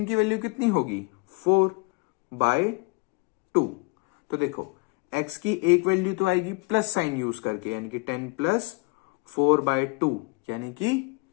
की वैल्यू कितनी होगी? 4 बाय 2। तो देखो x की एक वैल्यू तो आएगी प्लस साइन यूज करके, यानी कि 10 प्लस 4 बाय 2, यानी कि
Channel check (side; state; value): right; quieter; 28.7 dB